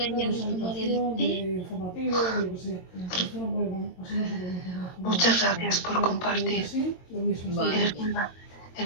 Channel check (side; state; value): right; late; 22 ms